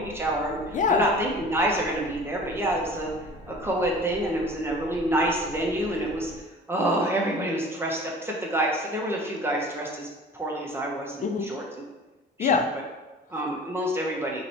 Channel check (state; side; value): normal; both; correlation 0.43